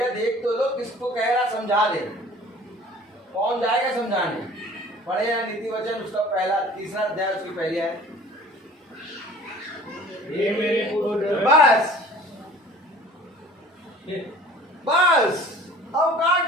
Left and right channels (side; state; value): both; normal; correlation 0.47